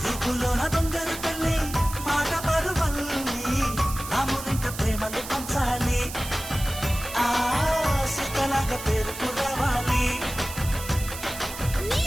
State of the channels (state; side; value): noise; right; hiss, 10 dB below the sound